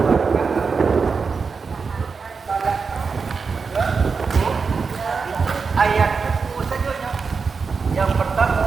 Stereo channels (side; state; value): left; quieter; 5.1 dB